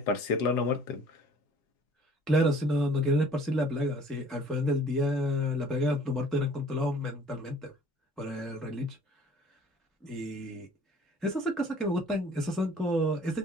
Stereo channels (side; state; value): both; normal; correlation 0.53